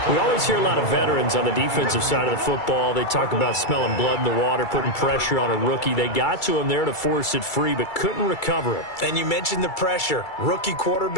We always hear a lot of veterans on the defensive side of the football. They talk about smelling blood in the water, putting pressure on a rookie. They got to him there to force it free, but couldn't recover it. And you mentioned the pressure. Rookie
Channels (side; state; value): right; late; 2.3 ms